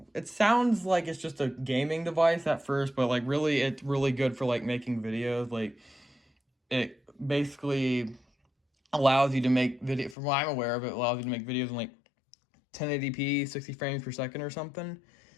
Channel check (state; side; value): drops out; right; at 10.2 s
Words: sounds like it's just a gaming device at first, but like really it's really good for like making videos. Like it basically allows you to make video, from what I'm aware of, it allows you to make videos in like 1080p, 60 frames per second or something.